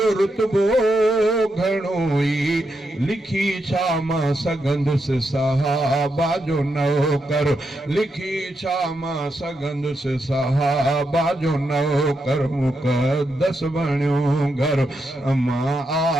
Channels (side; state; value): both; normal; correlation 0.83